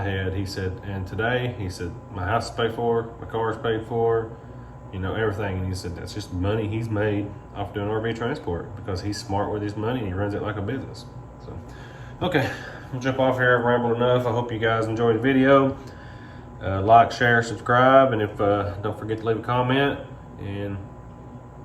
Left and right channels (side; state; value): both; identical; correlation 1.00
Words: He said, and today, he said, my house is paid for, my car is paid for, everything. And he said, that's just money he's made off doing RV transport, because he's smart with his money and he runs it like a business. So, okay, I'll jump off here. I've rambled enough. I hope you guys enjoyed the video. Like, share, subscribe, and if don't forget to leave a comment, and